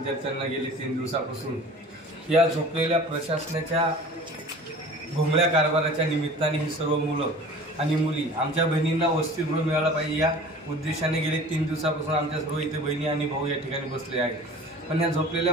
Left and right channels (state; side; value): normal; both; correlation 0.42